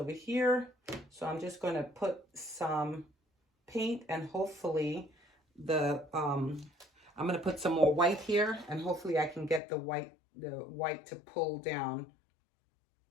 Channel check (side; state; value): right; drops out; at 9.6 s